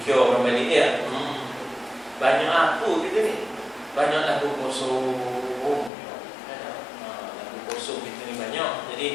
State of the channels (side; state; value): right; drops out; at 5.9 s